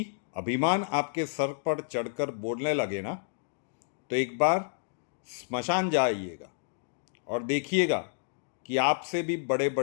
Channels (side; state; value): right; silent; digital silence